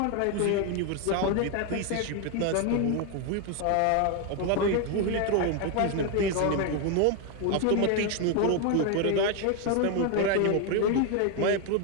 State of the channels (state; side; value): different; both; correlation 0.01